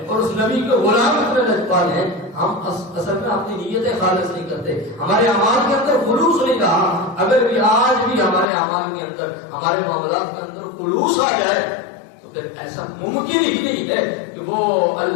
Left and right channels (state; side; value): drops out; right; at 8.5 s